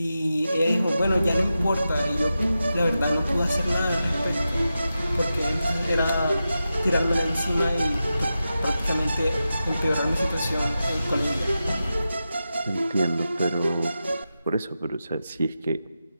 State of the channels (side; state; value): both; inverted; correlation -0.91